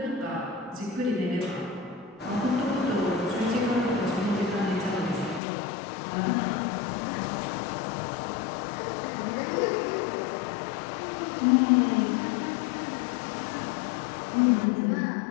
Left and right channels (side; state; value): right; drops out; at 5.4 s